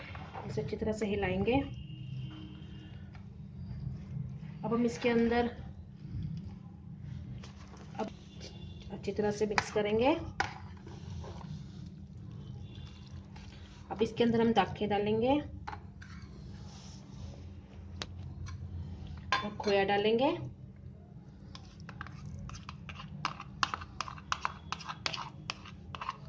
इसे अच्छी तरह से हिलाएंगे। अब हम इसके अंदर अच्छी तरह से मिक्स करेंगे। अब इसके अंदर हम दाखें डालेंगे और खोया डालेंगे।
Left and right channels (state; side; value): identical; both; correlation 1.00